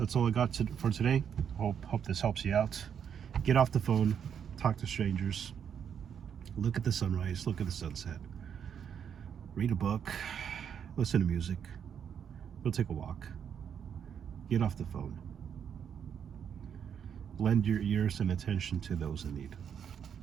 all I got for today. Hope this helps you out. Get off the phone, talk to strangers, look at the sunrise, look at the sunset, read a book, listen to music, go take a walk, get off the phone. Lend your ears and attention to those in need.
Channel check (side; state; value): left; quieter; 8.0 dB